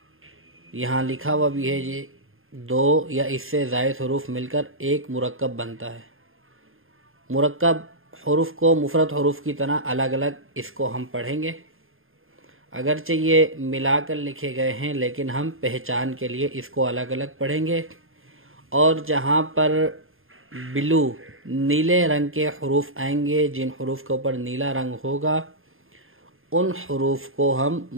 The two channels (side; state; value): left; late; 0.60 ms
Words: یہاں لکھا ہوا بھی ہے یہ 2 یا اس سے زائد حروف مل کر ایک مرکب بنتا ہے۔ مرکب حروف کو مفرد حروف کی طرح الگ الگ اس کو ہم پڑھیں گے، اگرچہ یہ ملا کر لکھے گئے ہیں لیکن ہم پہچان کے لیے اس کو الگ الگ پڑھیں گے، اور جہاں پر بلو نیلے رنگ کے حروف آئیں گے، جن حروف کے اوپر نیلا رنگ ہوگا، ان حروف کو ہم